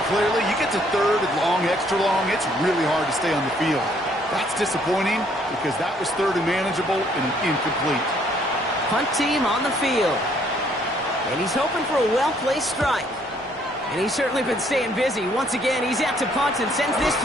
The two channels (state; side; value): normal; both; correlation 0.65